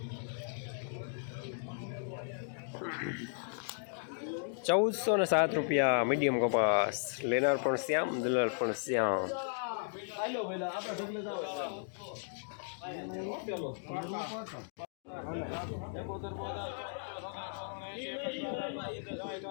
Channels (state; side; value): silent; right; digital silence